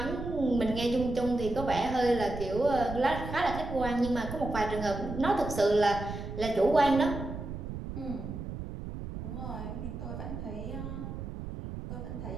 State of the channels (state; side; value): noise; right; rumble, 8 dB below the sound